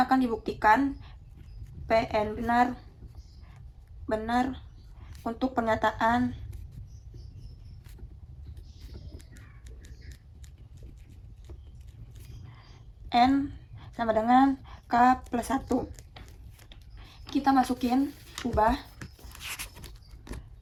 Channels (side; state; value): both; identical; correlation 1.00